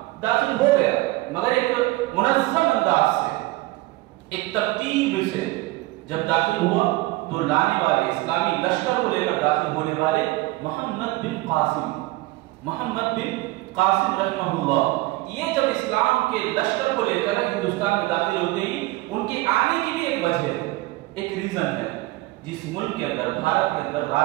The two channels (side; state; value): left; quieter; 19.7 dB